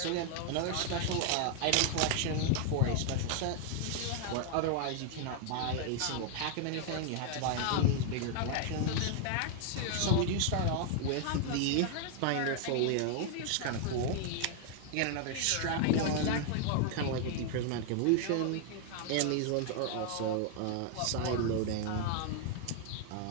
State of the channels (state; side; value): different; both; correlation 0.00